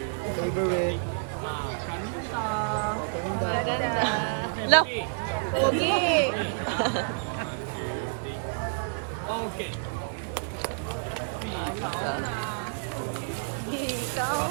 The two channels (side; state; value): left; silent; digital silence